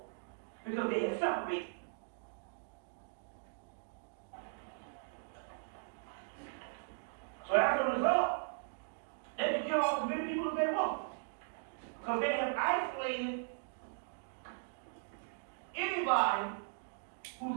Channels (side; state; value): left; silent; digital silence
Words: because they have separated. So as a result, they can kill off as many people as they want, because they have isolated anybody